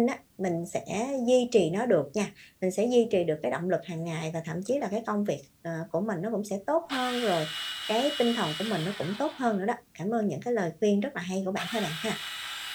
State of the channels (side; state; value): both; identical; correlation 1.00